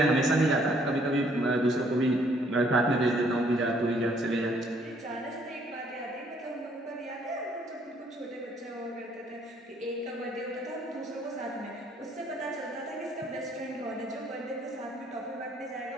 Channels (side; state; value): both; normal; correlation 0.64